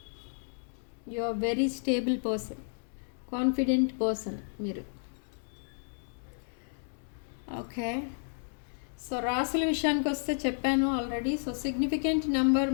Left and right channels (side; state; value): right; silent; digital silence